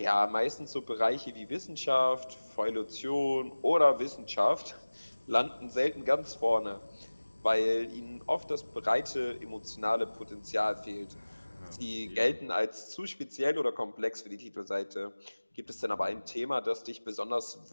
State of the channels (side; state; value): both; inverted; correlation -1.00